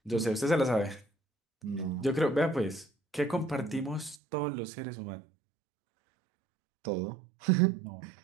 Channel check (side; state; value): left; drops out; at 4.2 s